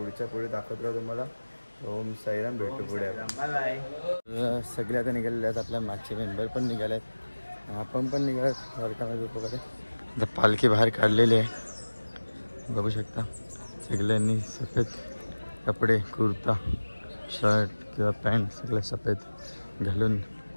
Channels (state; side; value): inverted; both; correlation -1.00